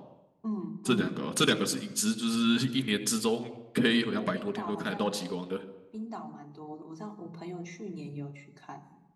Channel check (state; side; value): identical; both; correlation 1.00